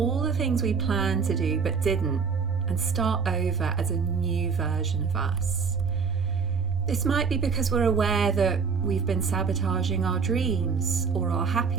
the things we planned to do but didn't, and start over as a new version of us. This might be because we're aware that we've been sabotaging our dreams or our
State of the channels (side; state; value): left; quieter; 5.6 dB